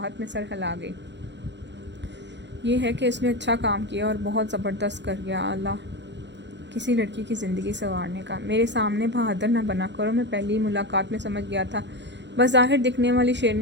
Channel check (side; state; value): left; late; 0.52 ms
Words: में सर हिला गई। ये है कि इसने अच्छा काम किया और बहुत ज़बरदस्त कर गया। अल्लाह किसी लड़की की ज़िंदगी संवारने का। मेरे सामने बहादुर ना बना करो, मैं पहली मुलाकात में समझ गया था बज़ाहिर दिखने वाली